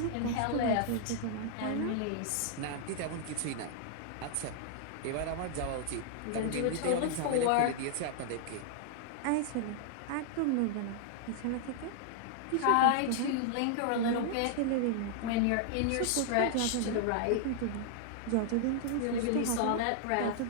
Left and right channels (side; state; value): both; different; correlation -0.01